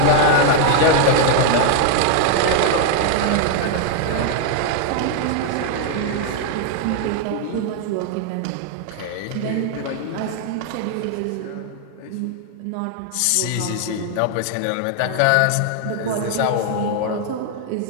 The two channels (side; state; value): both; different; correlation 0.00